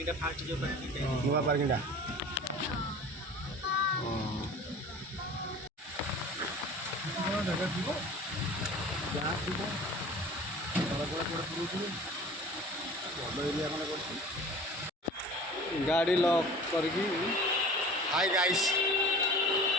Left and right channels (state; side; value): normal; both; correlation 0.41